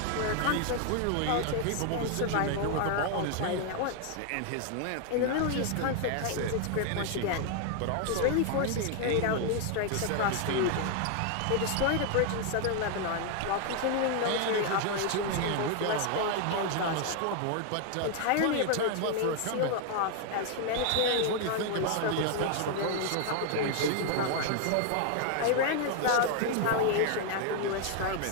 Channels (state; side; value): different; both; correlation 0.00